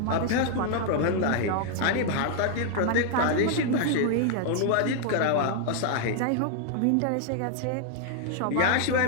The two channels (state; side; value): different; both; correlation 0.00